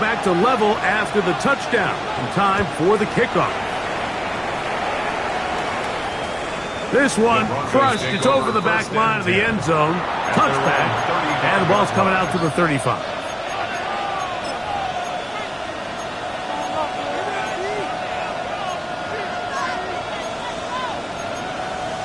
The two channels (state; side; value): identical; both; correlation 1.00